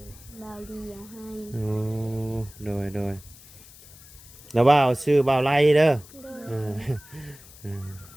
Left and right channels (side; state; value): left; noise; hiss, 21 dB below the sound